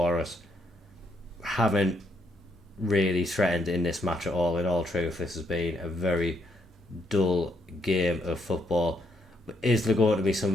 us. Haven't really threatened in this match at all. In all truth, this has been a very dull game of football. Is there going to be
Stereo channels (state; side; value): normal; both; correlation 0.74